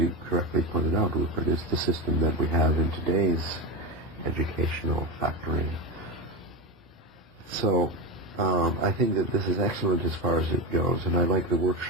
correctly pointed out, Rupert, is the system that we have in today's educational factory. So I think that this is excellent as far as it goes, and I like the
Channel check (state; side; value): normal; both; correlation 0.15